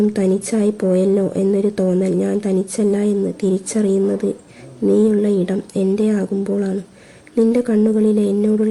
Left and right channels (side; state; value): both; identical; correlation 1.00